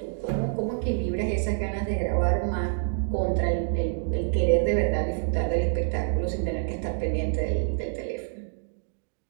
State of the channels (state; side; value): silent; left; digital silence